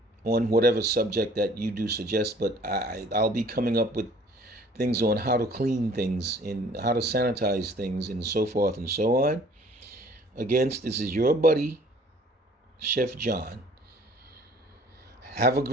on whatever subject that you do suggest. But I'll be coming up with things on how to clean things and how to sanitize things and so forth and so on. Again, this is your buddy, Chef John. Have a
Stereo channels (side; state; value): both; normal; correlation 0.54